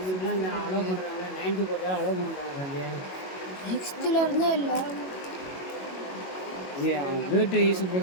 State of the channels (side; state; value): right; late; 22 ms